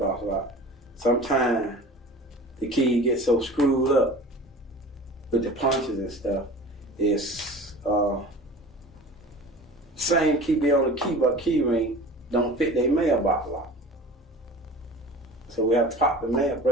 lock. Sometimes the key gets so screwed up with the punches and stuff. It's same key be on the key, but key ring don't fit their mailbox lock. So we have to pop the mail,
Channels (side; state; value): both; normal; correlation 0.39